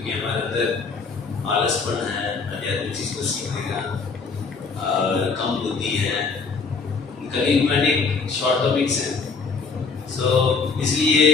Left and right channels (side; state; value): right; quieter; 4.8 dB